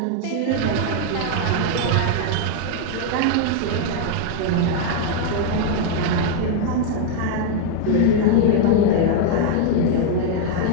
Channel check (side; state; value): both; different; correlation 0.00